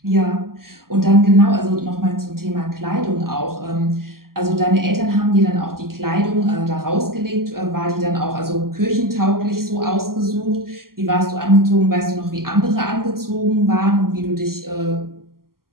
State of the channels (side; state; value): left; late; 0.92 ms